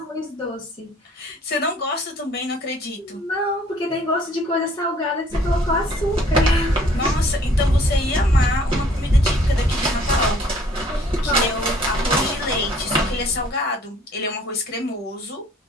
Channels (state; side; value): normal; both; correlation 0.58